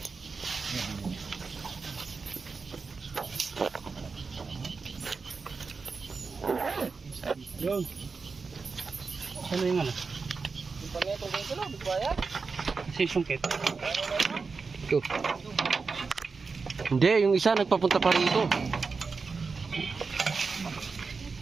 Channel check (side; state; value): left; quieter; 4.7 dB